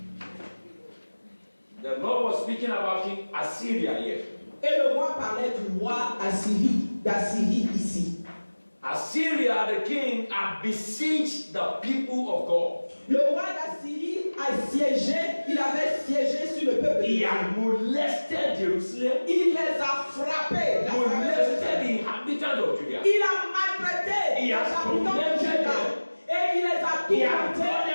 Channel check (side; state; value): both; inverted; correlation -1.00